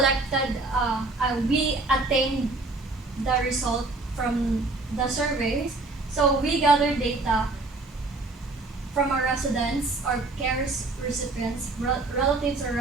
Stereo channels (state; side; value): quieter; left; 3.3 dB